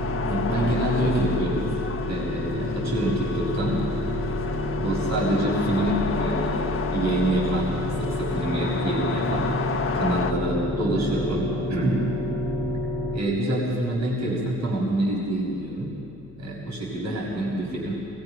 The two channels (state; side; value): noise; left; hum, 23 dB below the sound